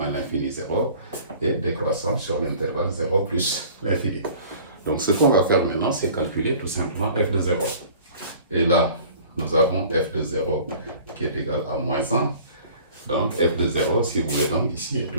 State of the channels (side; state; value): both; inverted; correlation -0.48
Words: l'infini 0 et décroissant sur l'intervalle 0 plus l'infini. Donc ce qu'on va faire maintenant, c'est calculer tout simplement f de 0. Et là, nous avons f de 0 qui est égal à moins 1. Donc f de 0, si vous voulez, donc ici est